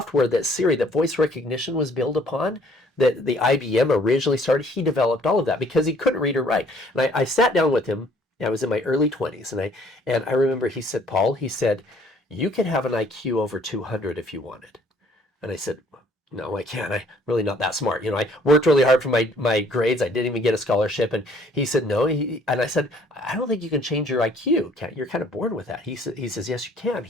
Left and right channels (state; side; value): normal; both; correlation 0.60